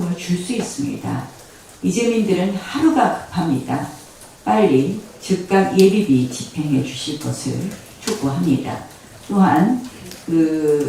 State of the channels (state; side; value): identical; both; correlation 1.00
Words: 줄 수 있습니다. 이재민들은 하루가 급합니다. 빨리 즉각 예비비 집행해 주실 것을 촉구합니다. 또한